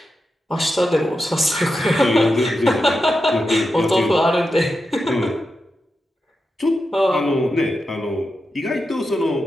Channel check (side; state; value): both; normal; correlation 0.89